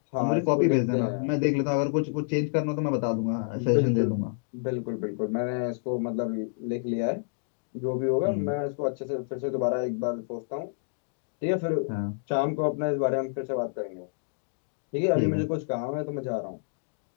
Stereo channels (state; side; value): silent; right; digital silence